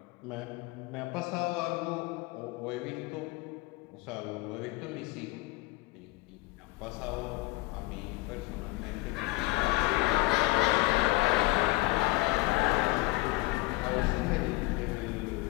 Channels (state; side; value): quieter; right; 21.8 dB